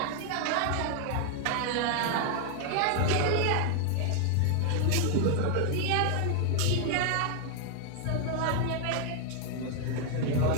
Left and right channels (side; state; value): both; different; correlation 0.00